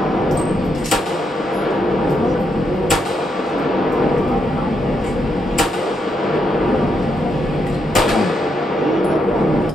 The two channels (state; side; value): normal; both; correlation 0.80